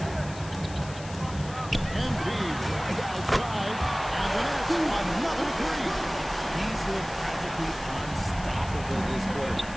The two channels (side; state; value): left; noise; hiss, 16 dB below the sound